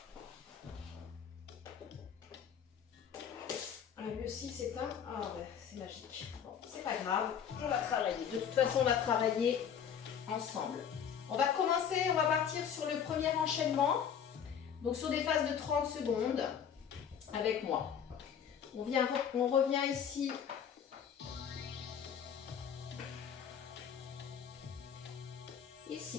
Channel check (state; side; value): quieter; right; 8.1 dB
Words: Le 6 s'éteint, ah ouais, c'est magique. Bon, c'est pas grave, on va travailler. De toute façon, on va travailler ensemble. On va commencer, on va partir sur le premier enchaînement. Donc sur des phases de 30 secondes avec moi. On revient ici.